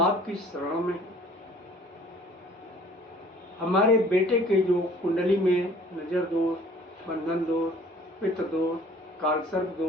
शरण में, हमारे बेटे के जो कुंडली में नजर दोष, बंधन दोष, पितृ दोष, कालसर्प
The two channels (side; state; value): both; normal; correlation 0.53